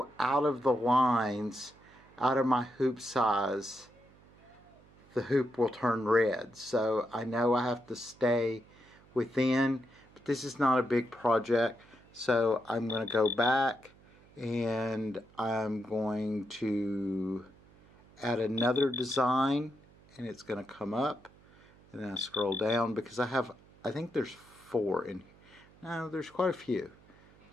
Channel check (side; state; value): right; noise; hum, 26 dB below the sound